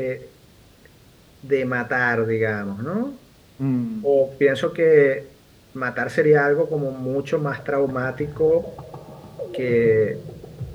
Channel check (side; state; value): both; identical; correlation 1.00